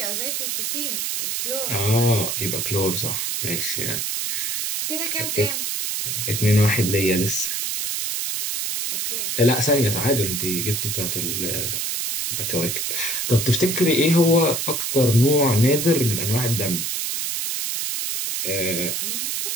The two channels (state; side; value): noise; right; hiss, 1 dB below the sound